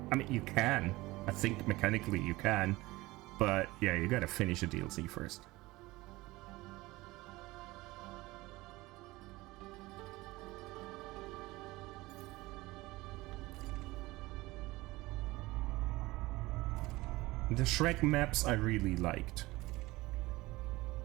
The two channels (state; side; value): quieter; left; 20.1 dB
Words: I mean, you can. I think mechanically you can, but yeah, you gotta finish a DLC first. The Shrek maps I really liked.